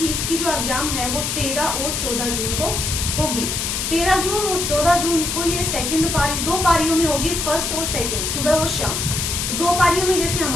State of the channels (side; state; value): left; noise; hiss, 1 dB below the sound